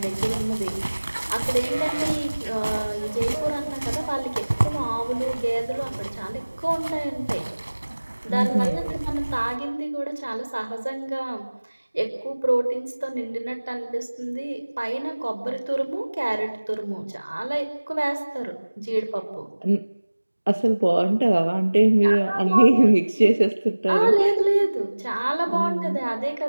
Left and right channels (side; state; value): both; inverted; correlation -1.00